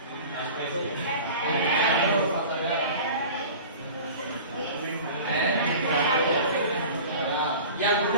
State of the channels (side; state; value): both; inverted; correlation -0.39